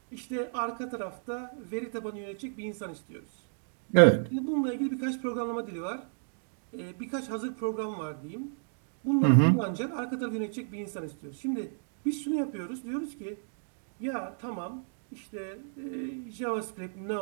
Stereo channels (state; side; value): silent; left; digital silence